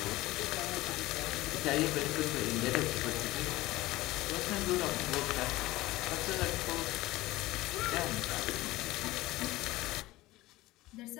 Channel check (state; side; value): quieter; right; 18.5 dB